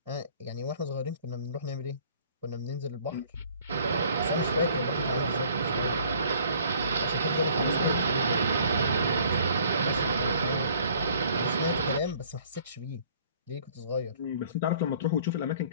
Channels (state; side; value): inverted; both; correlation -0.56